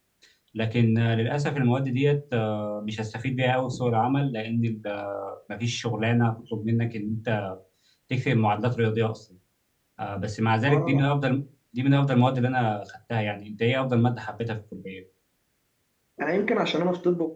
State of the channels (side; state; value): both; identical; correlation 1.00